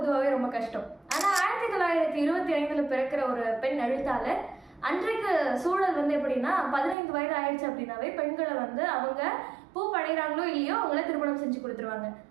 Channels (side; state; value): left; drops out; at 7.0 s